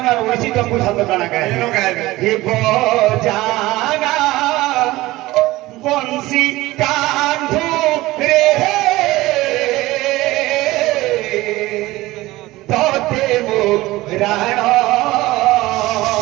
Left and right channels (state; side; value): quieter; left; 18.5 dB